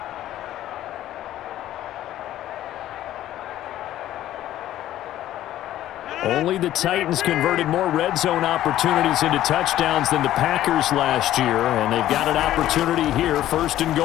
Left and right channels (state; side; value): quieter; right; 13.2 dB